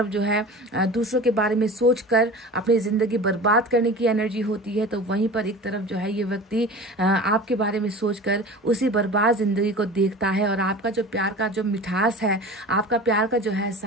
जो है दूसरों के बारे में सोचकर अपनी जिंदगी बर्बाद करने की एनर्जी होती है, तो वहीं पर एक तरफ जो है ये व्यक्ति आपके बारे में सोचकर उसी बर्बाद जिंदगी को देखता है और आपका जो प्यार का जो मिठास है, आपका प्यार का जो है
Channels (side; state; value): both; normal; correlation 0.36